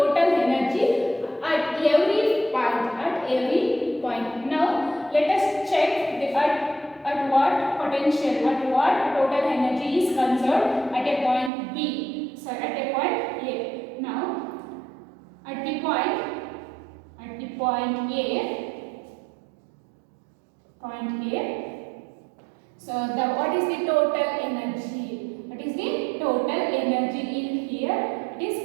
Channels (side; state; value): left; drops out; at 11.5 s